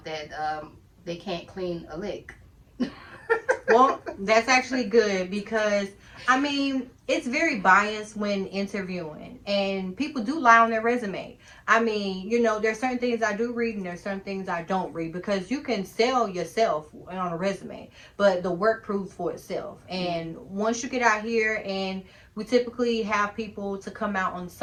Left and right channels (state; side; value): identical; both; correlation 1.00